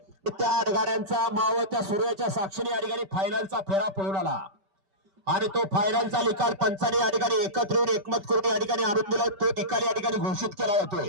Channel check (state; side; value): late; left; 5.1 ms